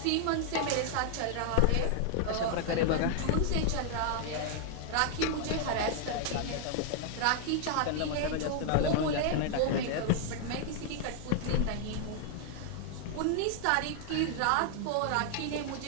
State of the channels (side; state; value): both; different; correlation 0.00